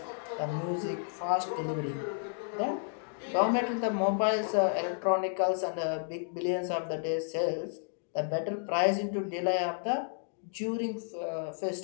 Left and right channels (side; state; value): right; silent; digital silence